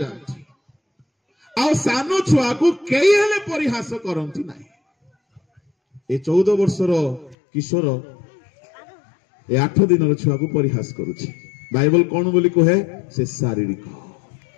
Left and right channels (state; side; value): drops out; right; at 7.4 s